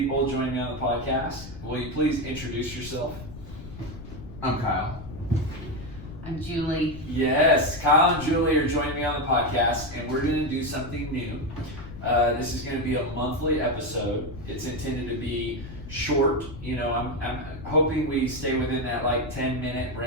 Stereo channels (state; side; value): noise; left; rumble, 12 dB below the sound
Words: joining me on the podcast. Will you please introduce yourself? I'm Kyle. I'm Julie. Yes, Kyle and Julie are joining me on the podcast, and we're going to do something new. This is going to be a monthly episode. It's intended to be short. You know, I'm hoping we stay within that like 10-minute